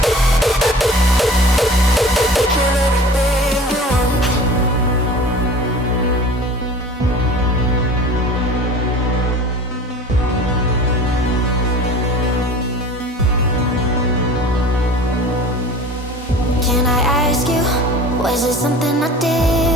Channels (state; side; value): normal; both; correlation 0.41